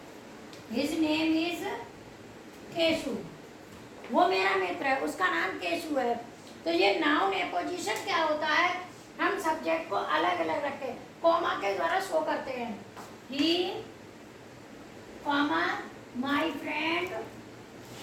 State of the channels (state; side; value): identical; both; correlation 1.00